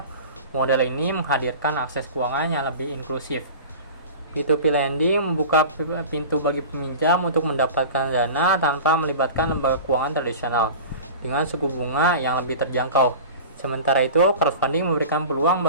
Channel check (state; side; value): inverted; both; correlation -0.36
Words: model ini menghadirkan akses keuangan yang lebih inklusif. P2P lending membuka pintu bagi peminjam untuk mendapatkan dana tanpa melibatkan lembaga keuangan tradisional, dengan suku bunga yang lebih terjangkau. Sementara itu, crowdfunding memberikan peluang